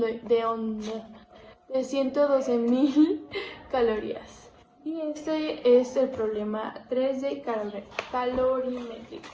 calorías. Y este es el problema 3 de calorimétrica.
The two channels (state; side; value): identical; both; correlation 1.00